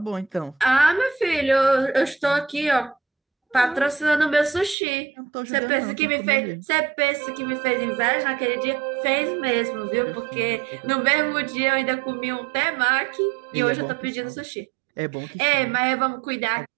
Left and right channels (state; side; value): drops out; left; at 4.8 s